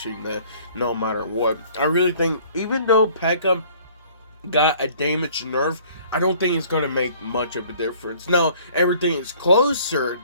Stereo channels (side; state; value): both; inverted; correlation -0.54